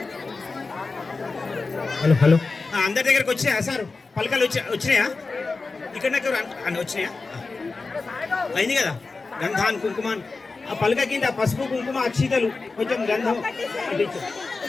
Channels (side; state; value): right; quieter; 4.0 dB